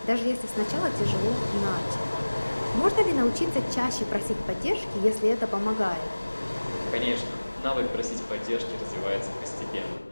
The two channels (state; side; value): inverted; both; correlation -1.00